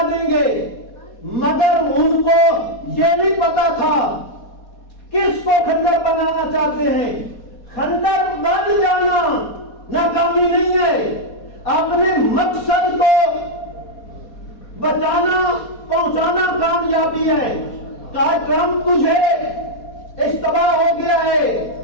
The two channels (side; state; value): right; late; 4.2 ms